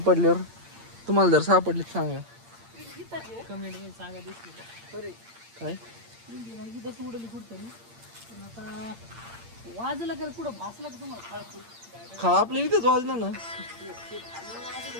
तुम्हाला जर सापडली सांगा कमेंट मध्ये सांगा. दिसली काय उडली कुठतरी आता वाजलं का कुठं भासलं का तुम्हाला खळ आपल्या इथेच वाजलं ना.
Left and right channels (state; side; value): late; left; 8.7 ms